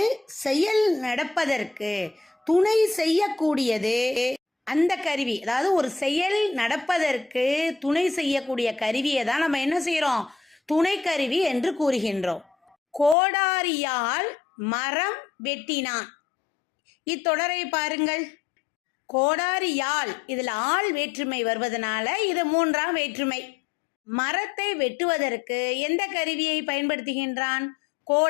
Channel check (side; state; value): right; drops out; at 13.2 s